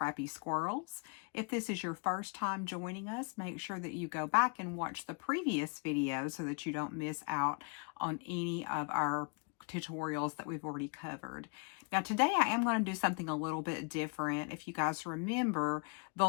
Squirrels. If this is your first time joining us, make sure that you go back and watch the previous video so that you don't miss out on any of our tutorials that we've already covered. Now today I am going to do something a little bit different. If you guys remember, the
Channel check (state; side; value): quieter; right; 37.1 dB